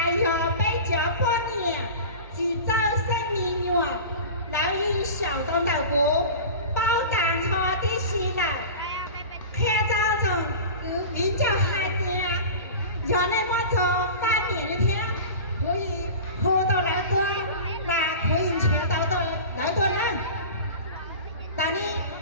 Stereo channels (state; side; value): inverted; both; correlation -0.34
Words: giờ bây giờ qua nè chỉ cho sinh mình nhỏ lão y小东岛国包胆cho đi xí lão khe cho chồng cứ biến cho hai tia giờ này mà cho ba miệng như thế có gì hồ tao lại tôi là có gì chế tao tôi lại tôi nữa tại đi